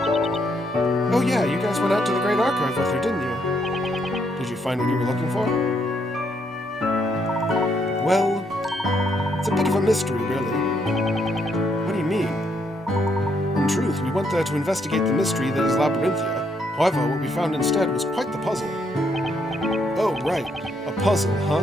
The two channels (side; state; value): both; normal; correlation 0.74